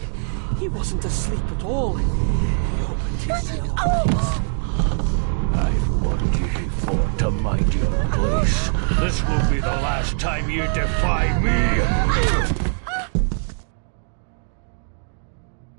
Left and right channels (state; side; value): silent; left; 64 dB below the other